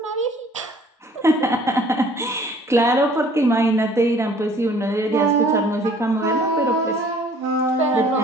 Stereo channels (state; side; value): normal; both; correlation 0.54